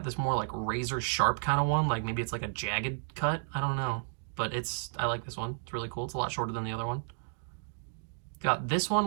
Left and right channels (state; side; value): silent; left; digital silence